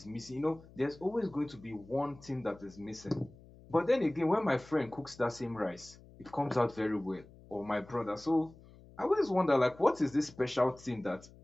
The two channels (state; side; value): noise; left; hum, 22 dB below the sound